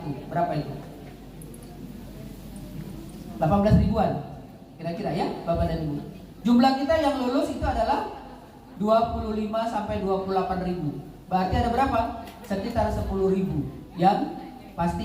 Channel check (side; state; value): both; identical; correlation 1.00